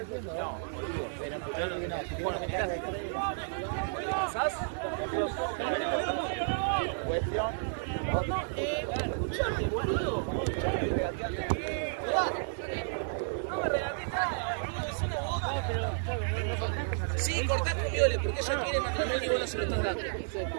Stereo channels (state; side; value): silent; left; digital silence